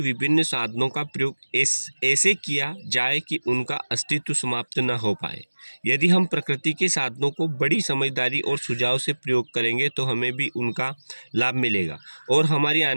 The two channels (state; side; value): inverted; both; correlation -1.00